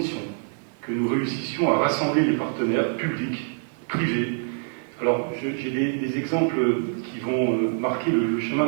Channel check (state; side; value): silent; left; 58 dB below the other